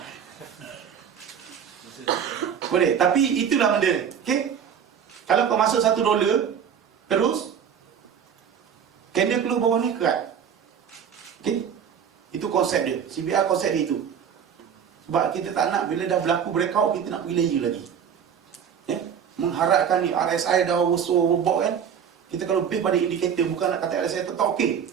Boleh, tapi itulah benda. Okay? Kalau kau masuk $1 terus candle keluar bawah ni kerat. Okay? Itu konsep dia. CBR konsep dia itu. Sebab kita tak nak bila dah berlaku breakout, kita nak pergi layer lagi. Mengharapkan ni RSI dah overbought kan. Kita kalau base pada indikator, bukan nak kata RSI tetap okey.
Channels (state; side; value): quieter; left; 7.9 dB